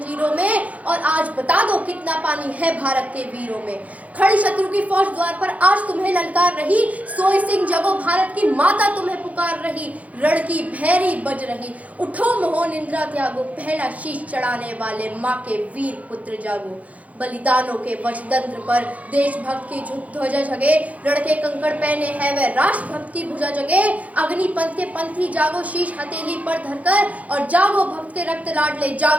में, और आज बता दो कितना पानी है भारत के वीरों में। खड़ी शत्रु की फौज द्वार पर आज तुम्हें ललकार रही, सोई सिंह जगो भारत की माता तुम्हें पुकार रही। रण की भैरी बज रही, उठो मोहो निंद्रा त्यागो, पहला शीश चढ़ाने वाले माँ के वीर पुत्र जागो। बलिदानों के वज्रतंत्र पर देशभक्त की ध्वजा जगे, रण के कंकड़ पहने है वह राष्ट्रभक्त की भुजा जगे। अग्निपंथ के पंथी जागो शीश हथेली पर धरकर, और जागो भक्त के रक्त लाडले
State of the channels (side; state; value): left; late; 0.070 ms